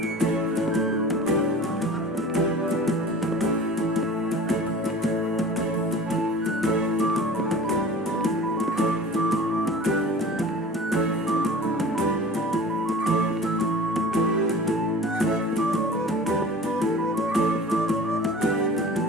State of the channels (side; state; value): both; normal; correlation 0.40